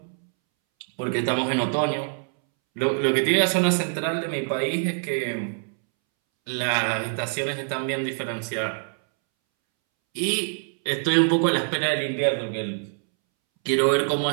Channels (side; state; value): left; silent; 62 dB below the other